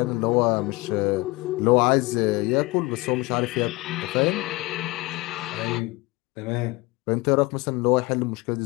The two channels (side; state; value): right; quieter; 22.4 dB